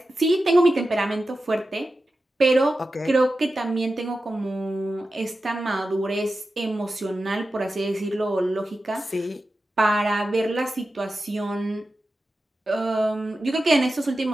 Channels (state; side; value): normal; both; correlation 0.93